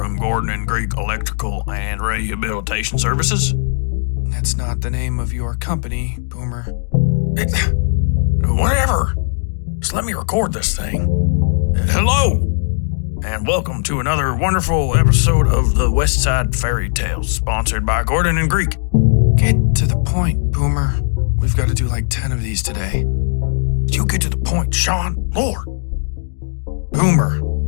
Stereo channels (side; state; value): right; silent; digital silence